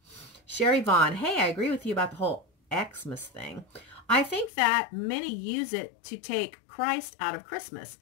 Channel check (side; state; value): right; drops out; at 4.5 s